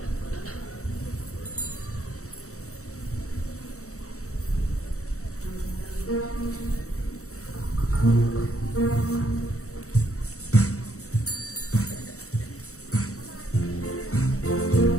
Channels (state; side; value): late; right; 0.64 ms